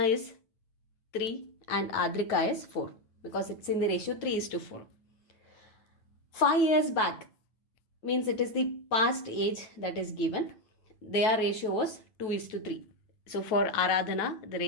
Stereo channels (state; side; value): late; right; 9.0 ms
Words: is 3 and Adrika is 4 because it's in the ratio 3:4. 5 years back means it is the past age that is given. Their ratio was 2:3. So for Aradhana, the